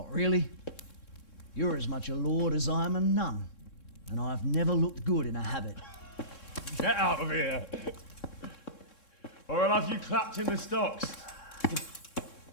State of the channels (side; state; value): right; late; 3.7 ms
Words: really. You're as much a lord as I am a nun. And I've never looked good in a habit. Get out of here! Or I'll have you clapped in the stocks.